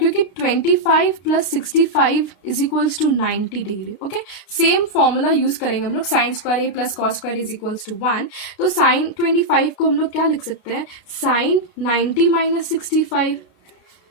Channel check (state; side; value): late; right; 33 ms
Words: 25 plus 65 is equals to 90 degree. Okay, same formula use करेंगे हम लोग, sine square A plus cos square is equals to 1. तो sign 25 को हम लोग क्या लिख सकते हैं, साइन 90 माइनस 65,